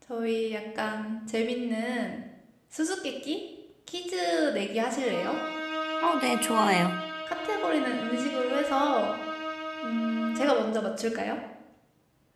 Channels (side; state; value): both; identical; correlation 1.00